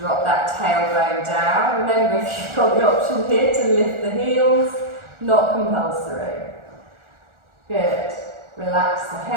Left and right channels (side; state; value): left; late; 1.4 ms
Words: that tailbone down. Remember, if you've got the option here to lift the heels, not compulsory. Good. Relax the